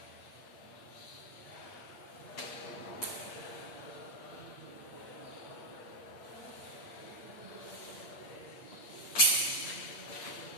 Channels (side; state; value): right; late; 8.7 ms